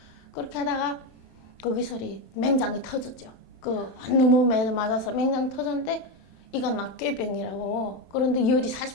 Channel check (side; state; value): right; late; 27 ms